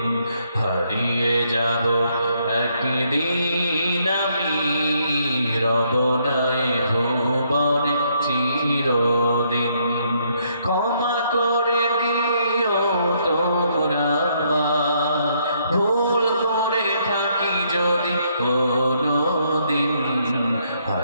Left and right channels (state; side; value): inverted; both; correlation -0.71